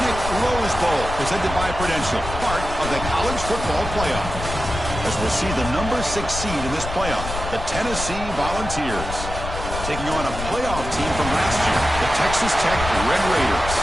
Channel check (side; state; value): left; noise; rumble, 7 dB below the sound